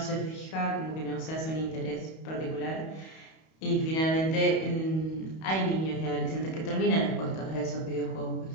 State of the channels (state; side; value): late; right; 31 ms